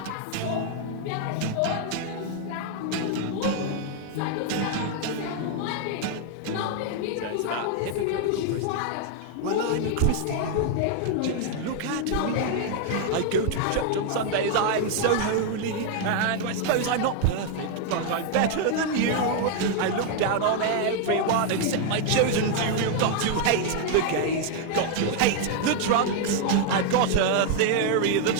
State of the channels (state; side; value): different; both; correlation 0.00